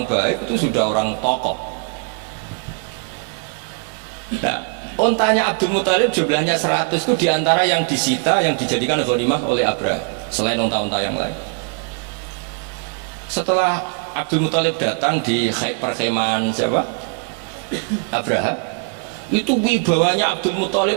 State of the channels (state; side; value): quieter; left; 38.4 dB